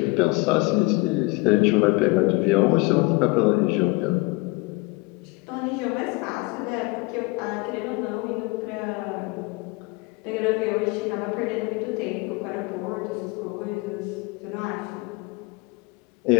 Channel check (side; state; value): right; quieter; 24.9 dB